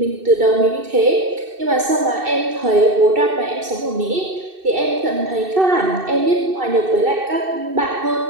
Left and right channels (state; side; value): late; left; 2.6 ms